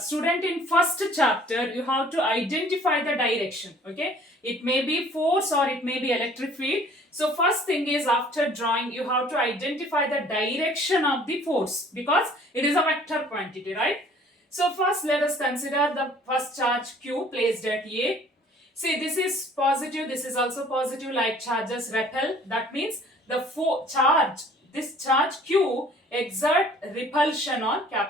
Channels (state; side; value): normal; both; correlation 0.54